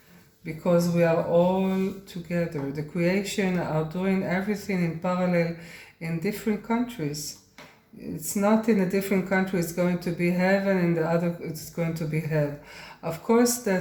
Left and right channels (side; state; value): both; identical; correlation 1.00